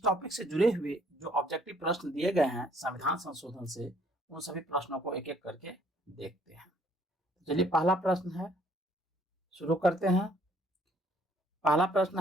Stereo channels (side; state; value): both; normal; correlation 0.62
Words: टॉपिक से जुड़े हुए जो ऑब्जेक्टिव प्रश्न दिए गए हैं संविधान संशोधन से, उन सभी प्रश्नों को एक एक करके देखते हैं। चलिए, पहला प्रश्न है, शुरू करते हैं। पहला